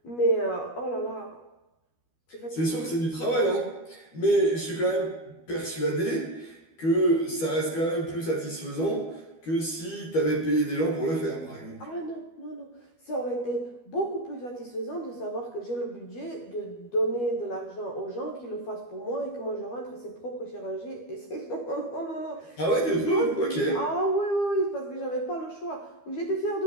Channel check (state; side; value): late; right; 12 ms